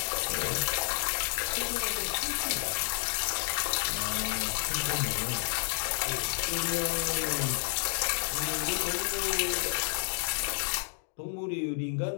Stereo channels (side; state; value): right; silent; digital silence